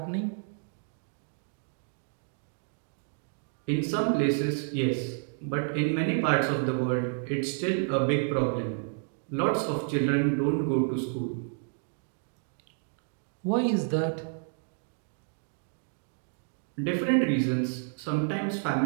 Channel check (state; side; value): silent; left; 58 dB below the other